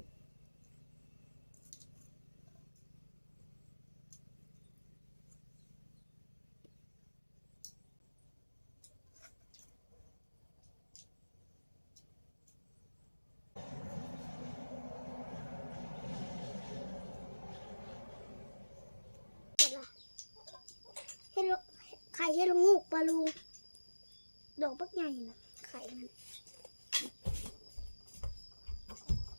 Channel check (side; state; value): both; inverted; correlation -1.00